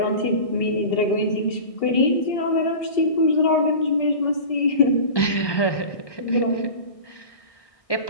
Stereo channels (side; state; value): right; late; 1.2 ms